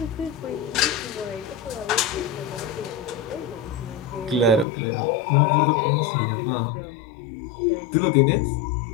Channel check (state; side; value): drops out; right; at 4.7 s